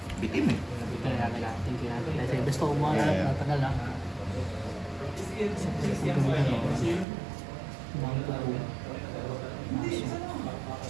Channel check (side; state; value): left; drops out; at 7.1 s